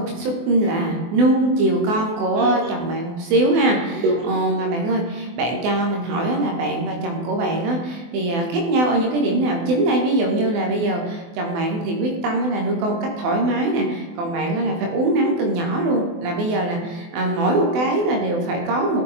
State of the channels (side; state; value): left; late; 24 ms